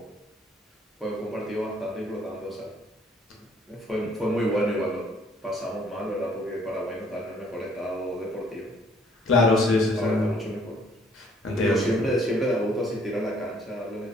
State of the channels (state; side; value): normal; both; correlation 0.62